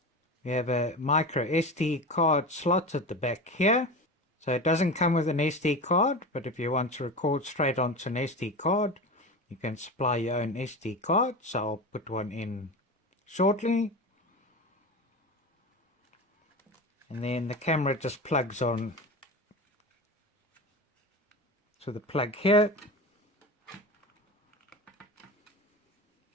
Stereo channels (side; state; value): both; normal; correlation 0.27